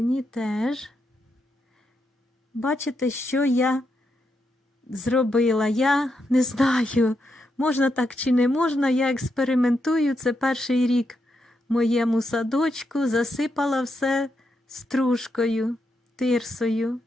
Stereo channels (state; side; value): normal; both; correlation 0.82